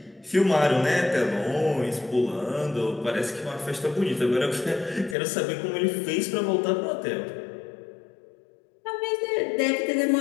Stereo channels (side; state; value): right; drops out; at 5.2 s